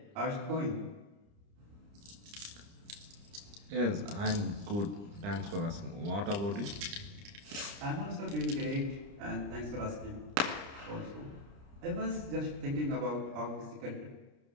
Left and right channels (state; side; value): late; left; 30 ms